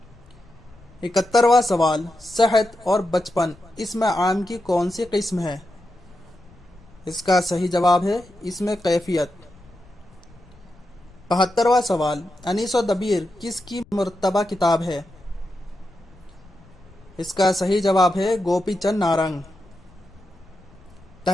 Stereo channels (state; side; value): noise; left; rumble, 25 dB below the sound